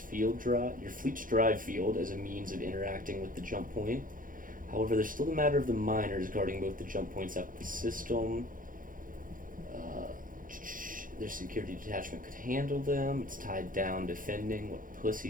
drive field as a means of interacting with the jump point. However, there's still the matter of the miners guarding both the jump points up the system. Their security detachment could handle them. It's tied down defending. What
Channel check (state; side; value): late; left; 0.40 ms